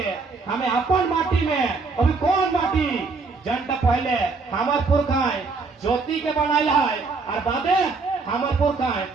हमें अपन माटी में अभी कौन माटी जनता पहले हमार पुरखाएं ज्योति के बनाया है और बादे हमार पुरखाएं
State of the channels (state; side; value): quieter; left; 4.3 dB